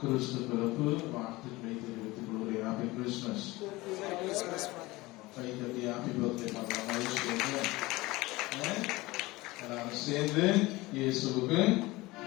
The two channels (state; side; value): quieter; right; 20.7 dB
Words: பிறப்பு வாழ்த்துக்களை தெரிவித்துக் கொள்கிறேன். Happy Christmas. கை தட்டி ஹாப்பி பர்த்டே பண்ணலாம். எல்லாரும் சேர்ந்து இயேசுவுக்கு